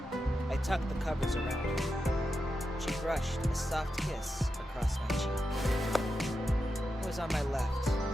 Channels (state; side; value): normal; both; correlation 0.88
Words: I tucked the covers around her. She brushed a soft kiss across my cheek. I was on my left,